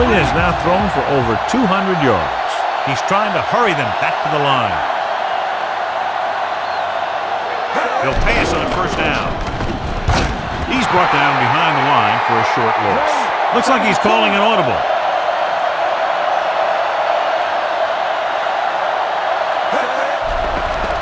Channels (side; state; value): both; identical; correlation 1.00